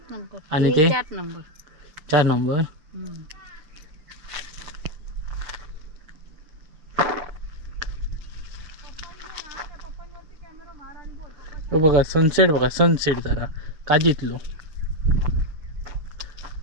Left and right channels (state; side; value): late; left; 6.7 ms